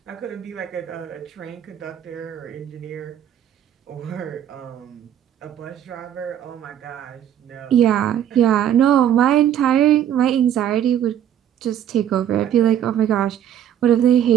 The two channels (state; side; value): quieter; left; 10.2 dB